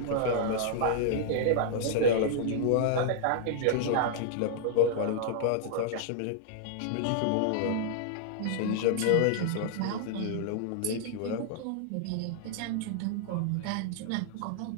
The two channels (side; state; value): both; different; correlation -0.01